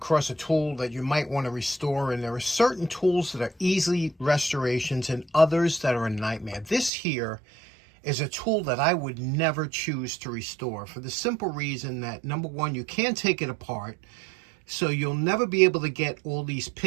a tool that you might want to restore, and there are certain tools that are easy restorations and others that are a nightmare. This here is a tool that I would never choose to restore for the simple reason that, number one, you can't take it apart, so you'll never be able to get all these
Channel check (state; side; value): drops out; left; at 6.9 s